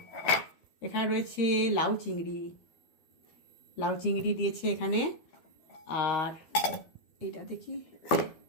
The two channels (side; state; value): right; late; 12 ms